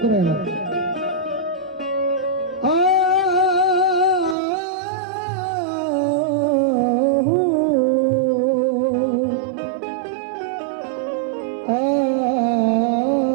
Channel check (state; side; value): drops out; left; at 4.4 s